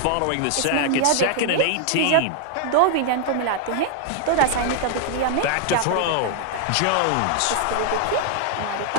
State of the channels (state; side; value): different; both; correlation 0.00